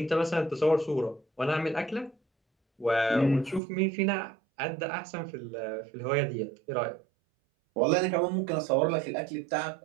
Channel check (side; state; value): left; drops out; at 3.6 s